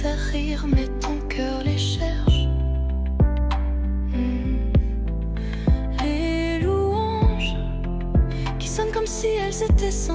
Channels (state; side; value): identical; both; correlation 1.00